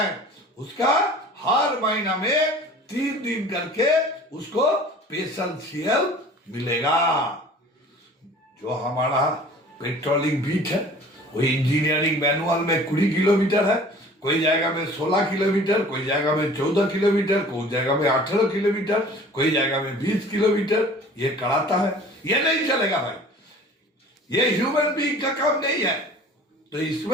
उसका हर महीना में 3 दिन करके उसको स्पेशल सीएल मिलेगा। जो हमारा पेट्रोलिंग बीट है वो इंजीनियरिंग मैनुअल में 20 किलोमीटर है, कोई जगह में 16 किलोमीटर, कोई जगह में 14 किलोमीटर, कोई जगह में 18 किलोमीटर, कोई जगह में 20 किलोमीटर ये कराता है। ये नहीं चलेगा भाई, ये ह्यूमन बीइंग का काम नहीं है। तो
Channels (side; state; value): both; normal; correlation 0.46